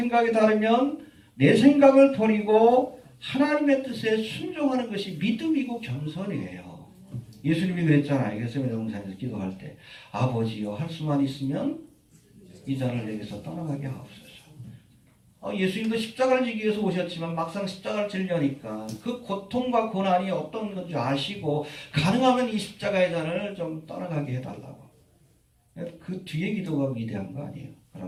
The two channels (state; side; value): identical; both; correlation 1.00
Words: 다르면 내 생각을 버리고 하나님의 뜻에 순종하는 것이 믿음이고 겸손이에요. 예수님이 그랬잖아요. 겟세마네 동산에서 기도할 때 아버지여 할 수만 있으면 이 잔을 내게서 떠나가게 하옵소서. 예수님도 십자가를 지기 위해서 오셨지만 막상 십자가를 지려니까 그 고통과 고난이 어떤 건지 아시고 가능하면 이 십자가의 잔을 좀 떠나가게 해달라고. 그 뒤에 기도가 위대한 거 아니에요.